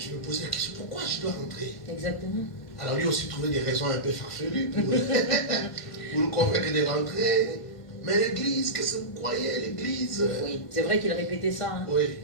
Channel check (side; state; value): right; late; 1.5 ms